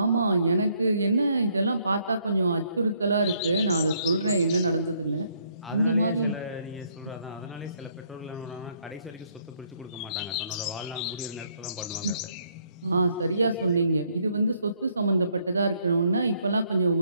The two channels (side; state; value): both; inverted; correlation -0.70